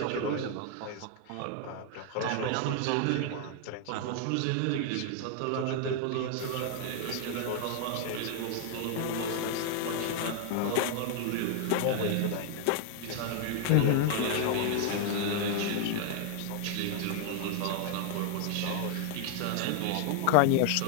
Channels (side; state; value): both; different; correlation 0.00